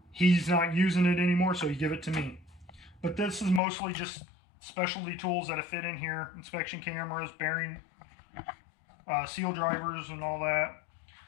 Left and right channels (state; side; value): drops out; right; at 3.6 s